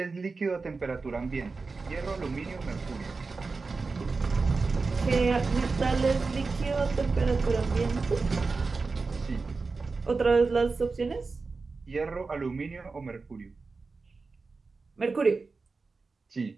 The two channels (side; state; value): left; quieter; 4.2 dB